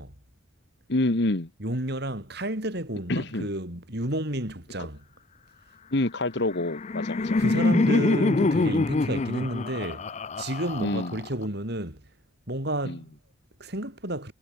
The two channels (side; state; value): both; normal; correlation 0.53